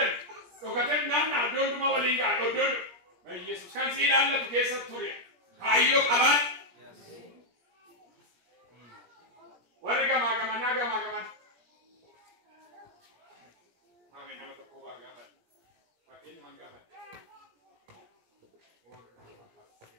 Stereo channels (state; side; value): late; left; 17 ms